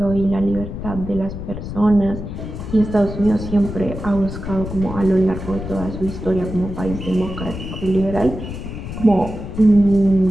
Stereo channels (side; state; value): left; noise; rumble, 8 dB below the sound